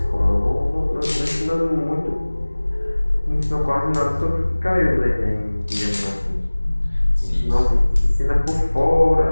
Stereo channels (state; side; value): inverted; both; correlation -1.00